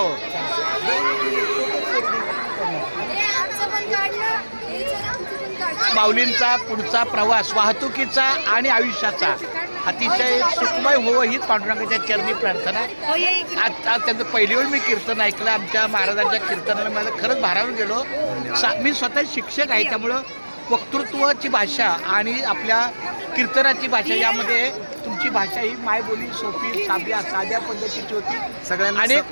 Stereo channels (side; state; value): both; inverted; correlation -1.00